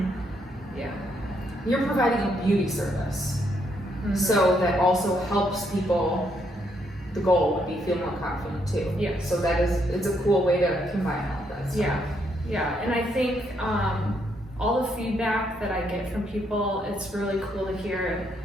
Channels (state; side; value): normal; both; correlation 0.74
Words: Yeah. You're providing a beauty service, so that also helps people. The goal would be feel more confident too. Yeah. So it's a cool way to combine all of that stuff. Yeah, and I think all the feedback that I get from people, it's really cool to hear.